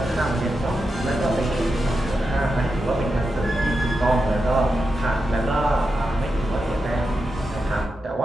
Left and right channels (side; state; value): both; normal; correlation 0.88